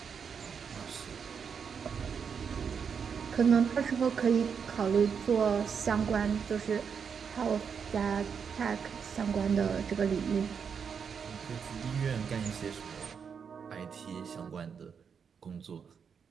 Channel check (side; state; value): left; quieter; 6.6 dB